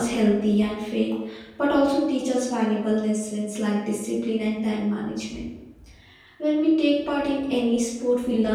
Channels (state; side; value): identical; both; correlation 1.00